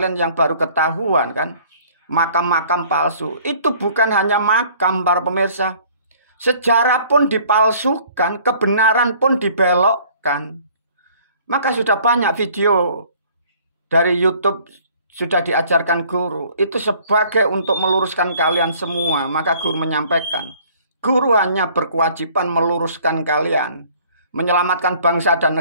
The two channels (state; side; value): inverted; both; correlation -0.55